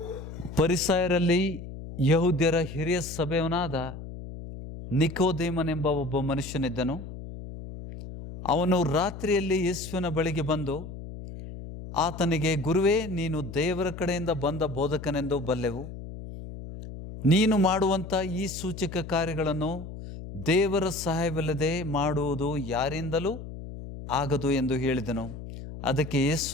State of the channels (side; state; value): left; noise; hum, 11 dB below the sound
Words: ಫರಿಸಾಯರಲ್ಲಿ ಯಹೂದ್ಯರ ಹಿರಿಯ ಸಭೆಯವನಾದ ನಿಕೋದೇಮನೆಂಬ ಒಬ್ಬ ಮನುಷ್ಯನಿದ್ದನು. ಅವನು ರಾತ್ರಿಯಲ್ಲಿ ಯೇಸುವಿನ ಬಳಿಗೆ ಬಂದು ಆತನಿಗೆ, ಗುರುವೇ, ನೀನು ದೇವರ ಕಡೆಯಿಂದ ಬಂದ ಬೋಧಕನೆಂದು ಬಲ್ಲೆವು. ನೀನು ಮಾಡುವಂಥ ಈ ಸೂಚಕ ಕಾರ್ಯಗಳನ್ನು ದೇವರ ಸಹಾಯವಿಲ್ಲದೆ ಮಾಡುವುದು ಯಾರಿಂದಲೂ ಆಗದು ಎಂದು ಹೇಳಿದನು. ಅದಕ್ಕೆ